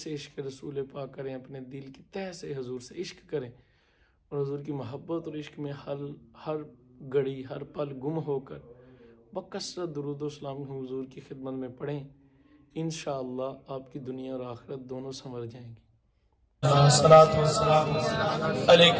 سے عشق رسول پاک کریں، اپنے دل کی تہ سے حضور سے عشق کریں اور حضور کی محبت اور عشق میں ہر گھڑی ہر پل گم ہو کر بکثرت درود و سلام حضور کی خدمت میں پڑھیں۔ انشاءاللہ آپ کی دنیا اور آخرت دونوں سنور جائیں گی۔ الصلاۃ والسلام علیک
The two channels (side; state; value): both; identical; correlation 1.00